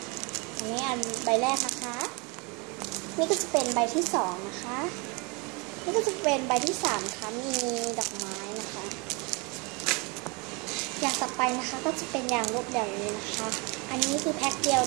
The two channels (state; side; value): quieter; left; 29.7 dB